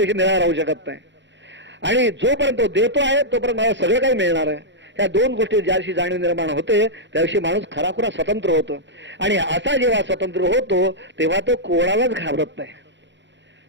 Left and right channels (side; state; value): left; late; 0.53 ms